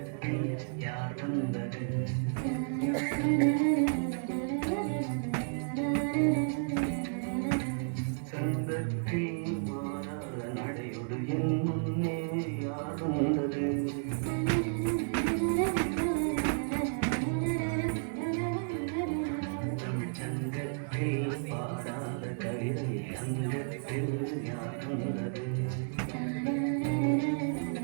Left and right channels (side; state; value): left; silent; digital silence